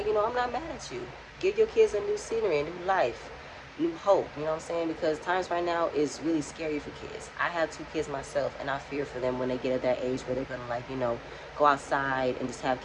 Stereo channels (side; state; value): both; identical; correlation 1.00